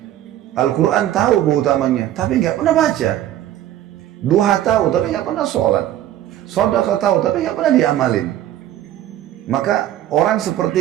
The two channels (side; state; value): left; quieter; 12.6 dB